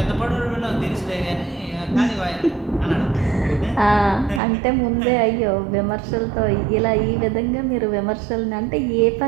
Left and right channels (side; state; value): left; drops out; at 4.4 s